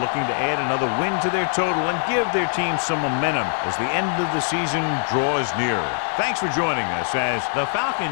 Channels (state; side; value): silent; right; digital silence